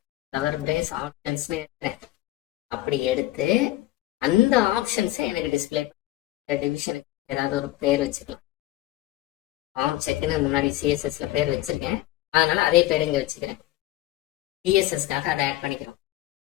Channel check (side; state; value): right; quieter; 16.3 dB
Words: கவர் பிரேஸ் ஆப்ஷன்ஸ்னு எடுக்கிறேன். அப்படி எடுத்து அந்த ஆப்ஷன்ஸை எனக்கு டிஸ்பிளே பண்ண டிவிஷனுக்கு ஏதாவது ஒரு பேர் வச்சுக்கலாம். ஃபார்ம் செக்குன்னு முன்னாடி சிஎஸ்எஸ்ல பேர் வச்சிருக்கேன், அதனால அதே பேர் இங்கே வச்சுக்கிறேன். சிஎஸ்எஸ்க்காக அதை ஆட் பண்ணிக்கிறோம்.